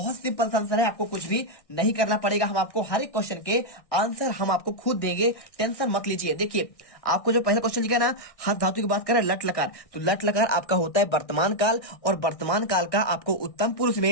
सिंपल सा आंसर है, आपको कुछ भी नहीं करना पड़ेगा। हम आपको हर एक क्वेश्चन के आंसर हम आपको खुद देंगे, टेंशन मत लीजिए। देखिए आपको जो पहला क्वेश्चन लिखा है ना हस धातु की बात करें लट लकार, तो लट लकार आपका होता है वर्तमान काल, और वर्तमान काल का आपको उत्तम पुरुष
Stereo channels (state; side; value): late; right; 1.6 ms